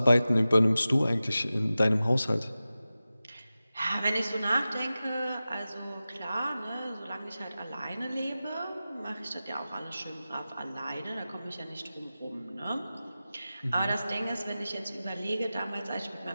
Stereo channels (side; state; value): both; inverted; correlation -0.95